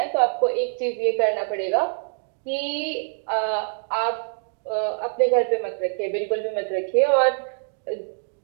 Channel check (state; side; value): silent; left; digital silence